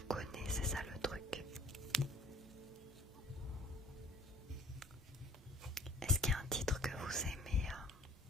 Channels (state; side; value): normal; both; correlation 0.53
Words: connais, c'est ça le truc. Est-ce qu'il y a un titre que vous aimez